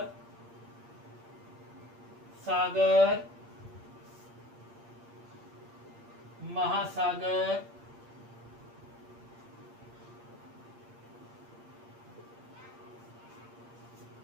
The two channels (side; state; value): left; late; 8.7 ms